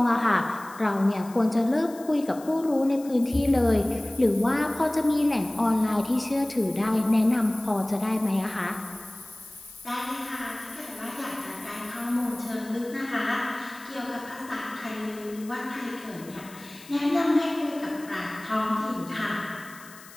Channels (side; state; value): left; noise; hiss, 20 dB below the sound